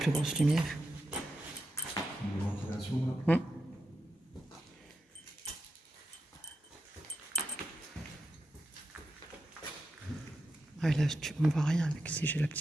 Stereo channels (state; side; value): normal; both; correlation 0.87